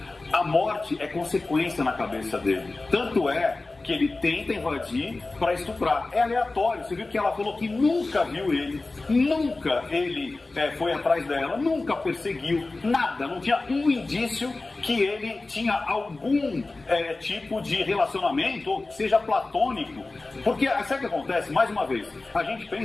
A morte é consequência na cabeça dele. Tanto é que ele tenta invadir para estuprar. É aleatório. Você viu que ela falou que nunca viu ele, nunca ele foi atrás dela, nunca perseguiu, nada. Não tinha um indício que ele tinha algum tipo de relacionamento, ou seja platônico. Porque, sabe o que acontece? Mais uma vez, a gente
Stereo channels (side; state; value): right; quieter; 3.3 dB